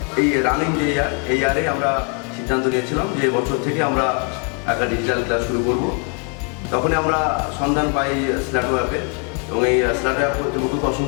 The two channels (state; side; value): quieter; right; 39.5 dB